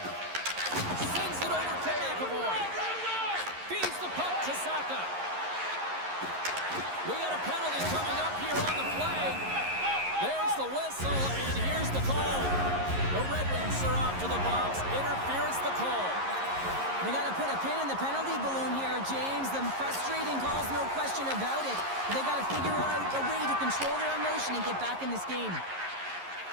Sends it over to McAvoy. Feeds the puck to Saka. We got a penalty coming up here on the play. There's the whistle, and here's the call. The Red Wings are off to the box. Interference the call. They got to put a pin in the penalty balloon here, James. The frustrating calls, no question about it. They got to figure out a way to control their emotion and get back in this game.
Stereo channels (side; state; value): left; late; 11 ms